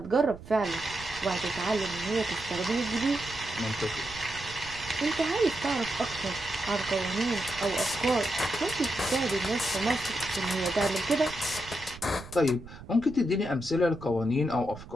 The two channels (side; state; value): right; noise; rumble, 16 dB below the sound